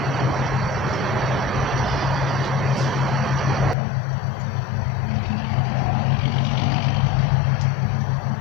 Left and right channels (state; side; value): drops out; right; at 3.8 s